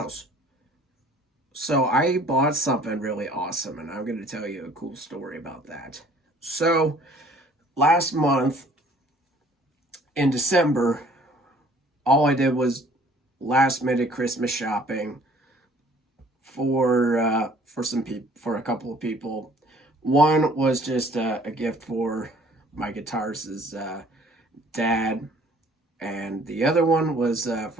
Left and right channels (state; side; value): normal; both; correlation 0.55